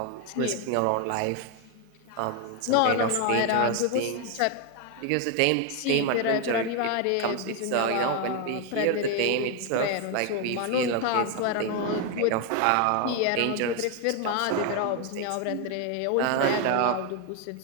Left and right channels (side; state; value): both; different; correlation 0.01